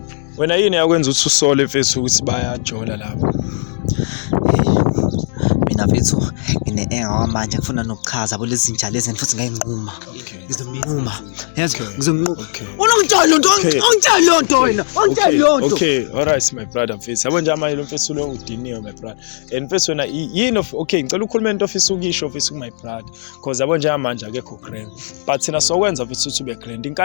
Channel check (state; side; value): silent; right; digital silence